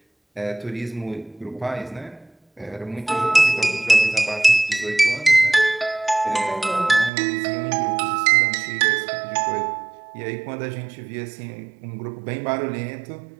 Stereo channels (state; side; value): drops out; left; at 7.1 s